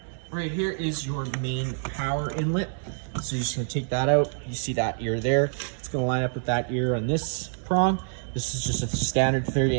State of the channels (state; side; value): silent; left; digital silence